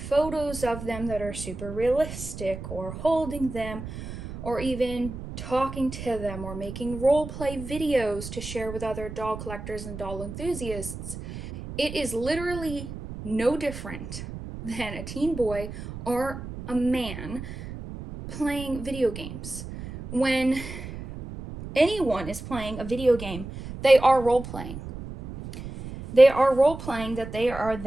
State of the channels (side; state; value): right; noise; rumble, 10 dB below the sound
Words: of them that are super realistic, or holding them, or even talking to them, or making role-play videos to share with other doll collectors and doll enthusiasts, it is literally no different than a teen boy or a man playing video games. When anyone is playing a video game, they are role-playing. They are role-playing that they are